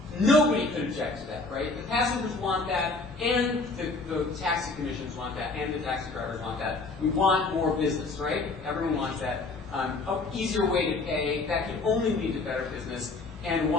nobody could object to that, right? The passengers want that, and the taxi commissions want that, and the taxi drivers want that. We want more business, right? Everyone wants that. An easier way to pay, that can only lead to better business. And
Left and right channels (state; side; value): quieter; right; 3.6 dB